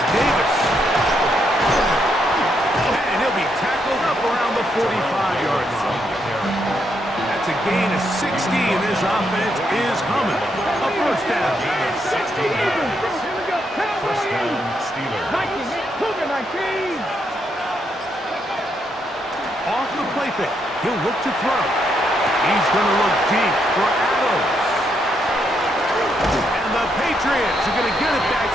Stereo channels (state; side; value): normal; both; correlation 0.78